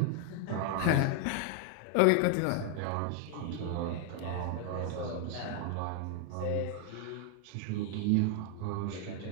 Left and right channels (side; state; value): both; different; correlation 0.00